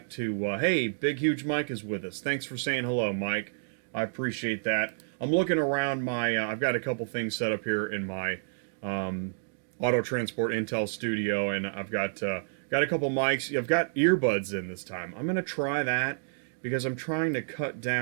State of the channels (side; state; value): left; silent; digital silence